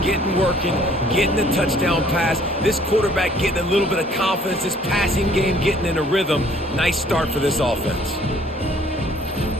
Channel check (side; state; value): both; normal; correlation 0.58